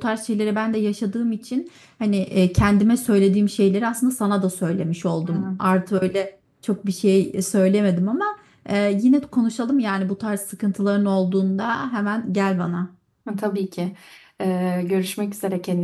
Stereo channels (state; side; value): identical; both; correlation 1.00